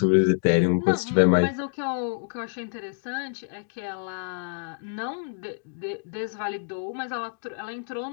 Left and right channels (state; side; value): silent; right; digital silence